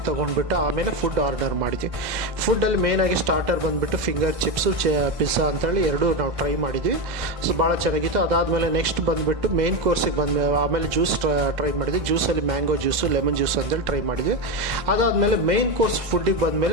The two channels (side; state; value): left; late; 2.0 ms